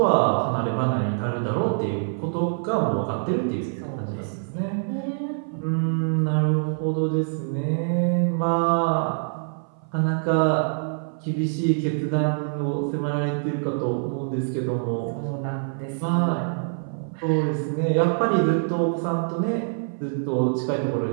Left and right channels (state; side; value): silent; left; 57 dB below the other